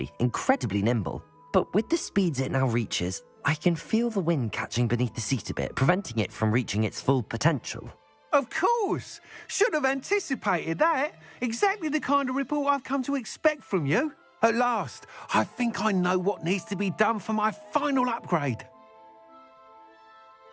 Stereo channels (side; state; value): both; identical; correlation 1.00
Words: incredibly nimble. But with the speeds it now reaches, I can feel the wind catching beneath the seat a bit, preventing it from reaching its full potential. Of course! Should have anticipated that. Exactly the kind of report I've come to expect from you. At last, I think I know what needs to be done for my final upgrade.